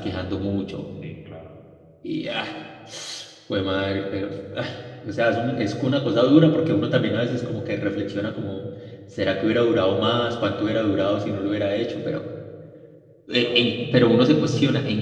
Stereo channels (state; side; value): identical; both; correlation 1.00